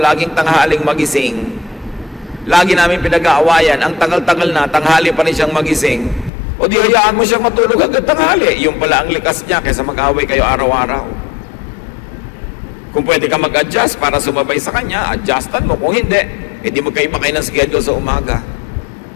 tanghaling magising? Lagi namin pinag-aawayan, ang tagal-tagal na, tanghali pa rin siyang magising. O di hayaan mo siyang matulog hanggang tanghali. Yung pala ang likas niya kaysa mag-away kayo araw-araw. Kung pwede ka mag-adjust para sumabay sa kanya, adjustan mo. Kung hindi, edi magkaiba kayo ng schedule sa umaga.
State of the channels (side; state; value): right; drops out; at 6.3 s